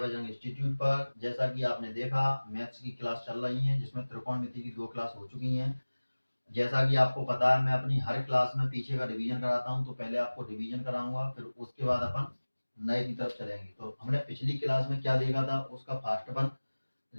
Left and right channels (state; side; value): inverted; both; correlation -1.00